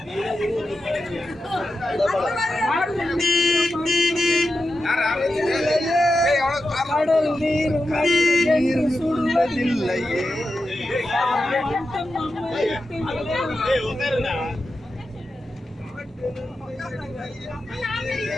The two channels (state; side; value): normal; both; correlation 0.90